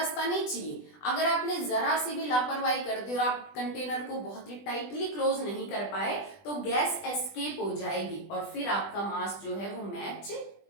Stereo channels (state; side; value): late; right; 20 ms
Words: नहीं चाहिए। अगर आपने जरा सी भी लापरवाही कर दी और आप कंटेनर को बहुत ही टाइटली क्लोज नहीं कर पाए, तो गैस एस्केप हो जाएगी और फिर आपका मास जो है वो मैच